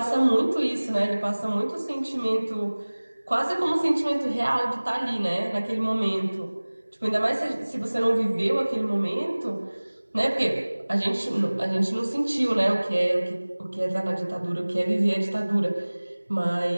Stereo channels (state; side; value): inverted; both; correlation -1.00